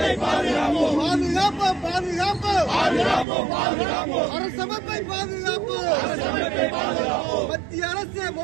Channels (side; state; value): left; drops out; at 3.2 s